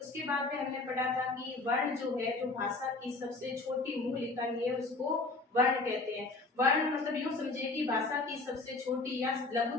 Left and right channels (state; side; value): quieter; right; 3.4 dB